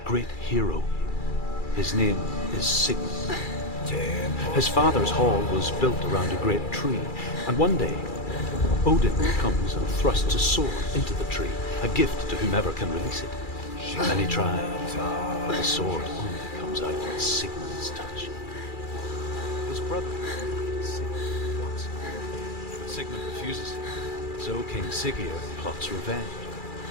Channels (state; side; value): late; right; 2.3 ms